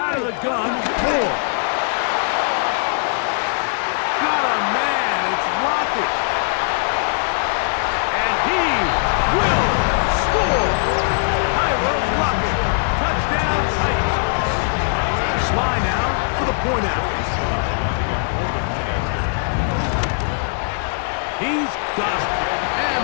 Out of the gun, Moore. Got a man, it's Lockett. And he will score. Tyler Lockett, touchdown Titans. Sly now for the point out. He's got it. And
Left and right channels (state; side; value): silent; right; digital silence